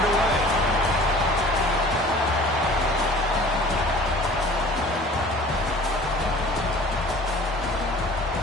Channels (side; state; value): both; normal; correlation 0.46